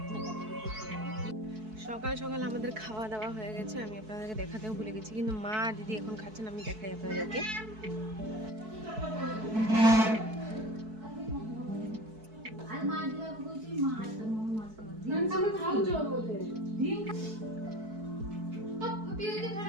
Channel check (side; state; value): left; late; 4.6 ms